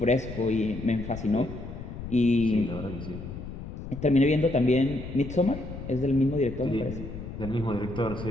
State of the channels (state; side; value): noise; left; rumble, 10 dB below the sound